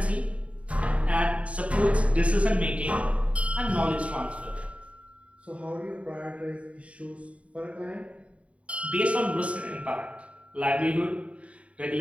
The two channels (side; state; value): left; late; 0.064 ms